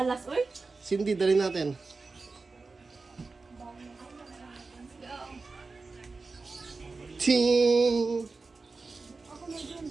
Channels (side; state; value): left; quieter; 4.0 dB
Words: uy. Cindy, dali natin. Ting!